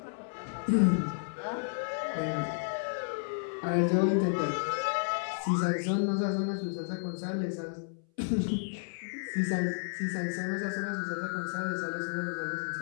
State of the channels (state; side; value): silent; right; 56 dB below the other